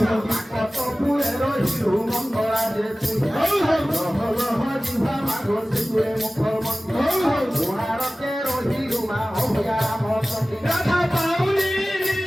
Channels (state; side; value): normal; both; correlation 0.97